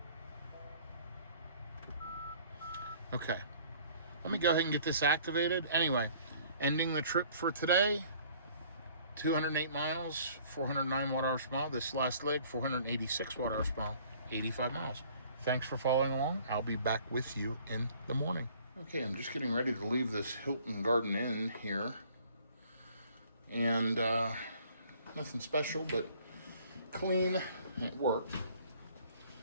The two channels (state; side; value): inverted; both; correlation -0.55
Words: Okay, let me go ahead and get this activated. Anyway, ending the trip for today, 208 miles, 409 watt-hours per mile. This last leg, 486 watt-hours per mile, 85 miles. Thanks for following along. I'll be back with you in the morning. Okay, I'm just getting ready to leave this Hilton Garden Inn here. And nothing special, but clean. It worked